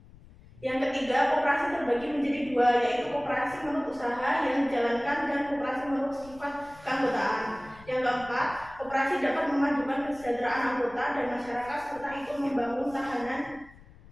Yang ketiga, koperasi terbagi menjadi dua, yaitu koperasi menurut usaha yang dijalankan dan koperasi menurut sifat keanggotaan. Yang keempat, koperasi dapat memajukan kesejahteraan anggota dan masyarakat serta ikut membangun tahanan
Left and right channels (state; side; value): noise; left; rumble, 22 dB below the sound